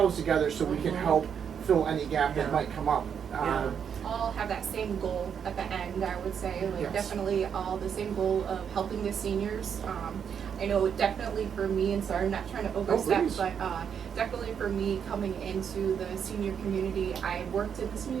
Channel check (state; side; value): quieter; left; 7.6 dB